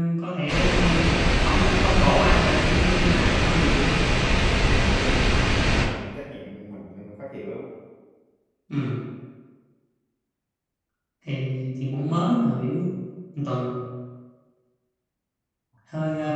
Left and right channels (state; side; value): identical; both; correlation 1.00